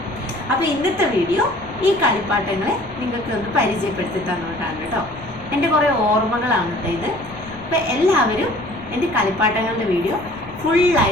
അപ്പോൾ ഇന്നത്തെ വീഡിയോ ഈ കളിപ്പാട്ടങ്ങളെ നിങ്ങൾക്ക് ഒന്ന് പരിചയപ്പെടുത്തി തന്നുകൊണ്ടാണ് കേട്ടോ. എൻ്റെ കുറേ ഓർമ്മകളാണ് കേട്ടോ ഇത്. അപ്പോൾ എല്ലാവരും എൻ്റെ കളിപ്പാട്ടങ്ങളുടെ വീഡിയോ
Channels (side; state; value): left; noise; rumble, 20 dB below the sound